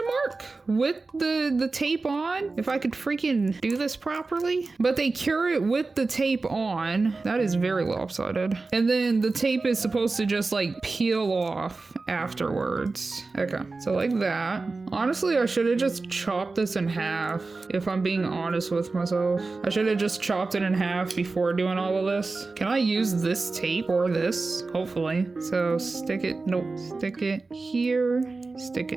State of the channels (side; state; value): left; quieter; 3.8 dB